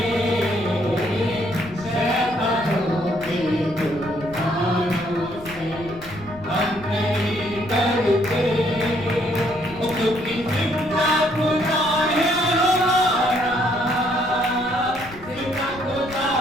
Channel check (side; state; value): left; noise; rumble, 18 dB below the sound